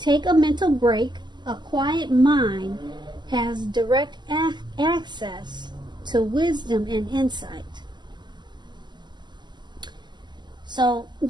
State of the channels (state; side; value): late; left; 0.21 ms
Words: a mental break. A quiet mind has direct access to wisdom and insight. So